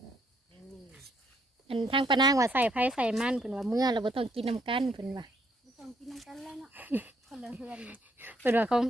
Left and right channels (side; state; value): both; normal; correlation 0.71